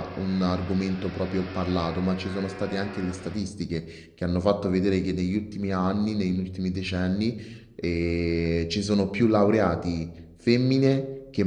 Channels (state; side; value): identical; both; correlation 1.00